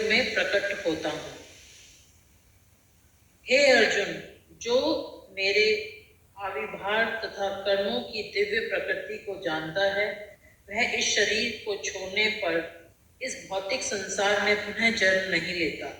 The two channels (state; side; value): identical; both; correlation 1.00